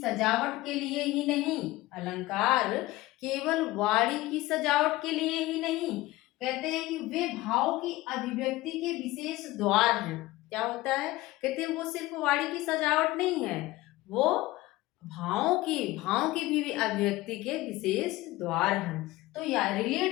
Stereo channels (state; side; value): quieter; right; 18.4 dB